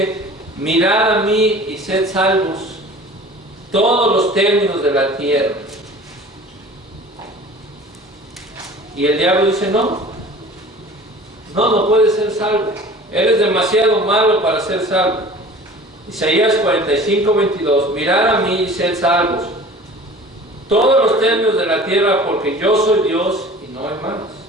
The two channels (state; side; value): normal; both; correlation 0.43